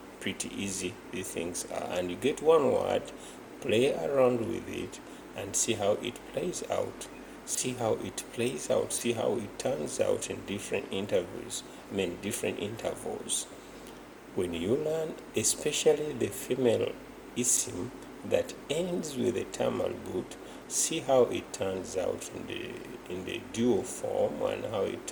pretty easy these things are. And you get one word, play around with it, and see how it plays out. See how it plays out. See how it turns out in different intervals. Different intervals. When you learn, especially the female isim that ends with a term al-but, see how it turns out in the dual form and how it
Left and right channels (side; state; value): both; identical; correlation 1.00